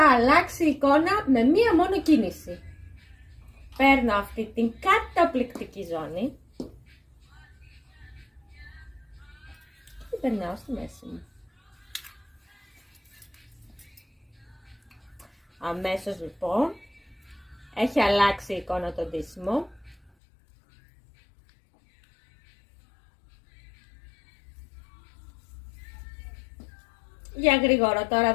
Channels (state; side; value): drops out; right; at 20.1 s